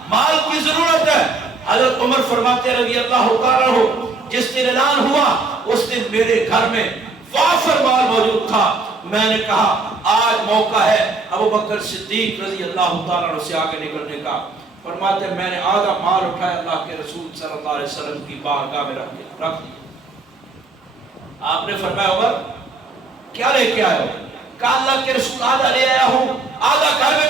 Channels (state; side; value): quieter; left; 3.7 dB